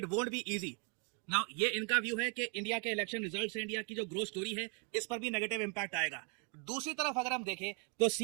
won't be easy. Now ये इनका व्यू है कि इंडिया के इलेक्शन रिजल्ट से इंडिया की जो ग्रोथ स्टोरी है इस पर भी नेगेटिव इंपैक्ट आएगा। दूसरी तरफ अगर हम देखें तो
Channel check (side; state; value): left; quieter; 36.8 dB